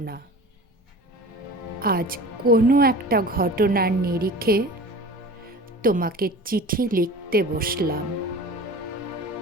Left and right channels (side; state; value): both; normal; correlation 0.38